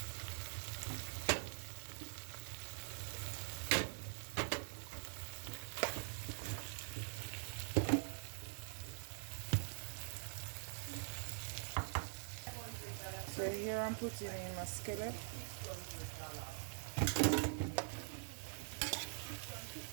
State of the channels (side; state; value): left; silent; digital silence